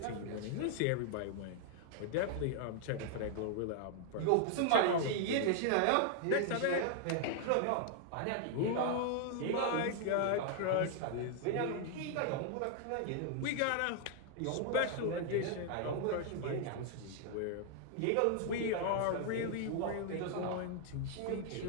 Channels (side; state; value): both; different; correlation 0.00